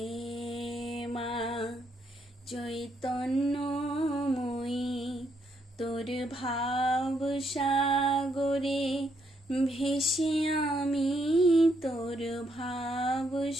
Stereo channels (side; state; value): both; normal; correlation 0.75